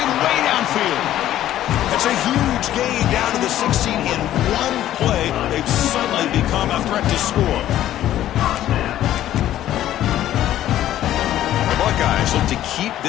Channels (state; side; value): quieter; right; 12.7 dB